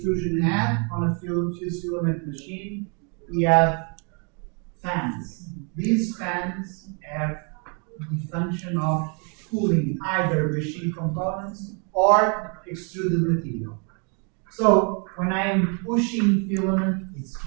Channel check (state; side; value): quieter; left; 37.1 dB